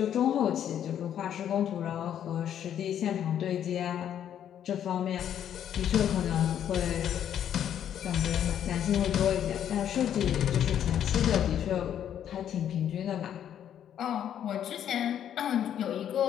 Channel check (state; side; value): quieter; right; 9.9 dB